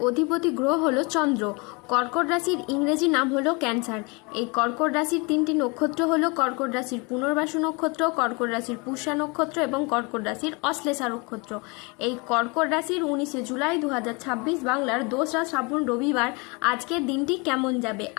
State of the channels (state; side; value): quieter; right; 29.5 dB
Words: অধিপতি গ্রহ হলো চন্দ্র। কর্কট রাশির ইংরেজি নাম হলো ক্যান্সার। এই কর্কট রাশির তিনটি নক্ষত্র হলো কর্কট রাশির পুনর্বাসু নক্ষত্র, কর্কট রাশির পুষ্যা নক্ষত্র এবং কর্কট রাশির অশ্লেষা নক্ষত্র। এই কর্কট রাশির 19শে জুলাই 2026 বাংলার 2রা শ্রাবণ রবিবার আজকের দিনটি কেমন যাবে।